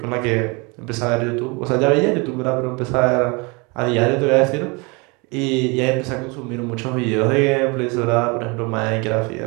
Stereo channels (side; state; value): left; quieter; 28.9 dB